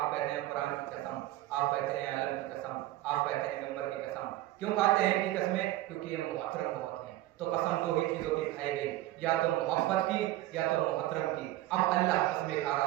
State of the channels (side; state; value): left; quieter; 15.7 dB